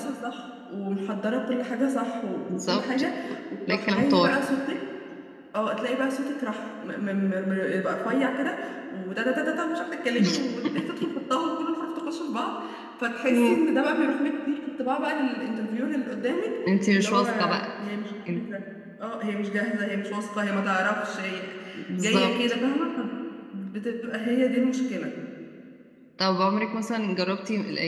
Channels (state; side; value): identical; both; correlation 1.00